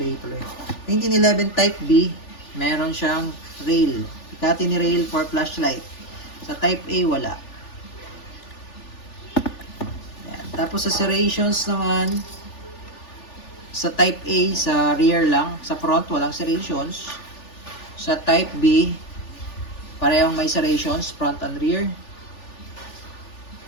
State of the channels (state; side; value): late; right; 3.4 ms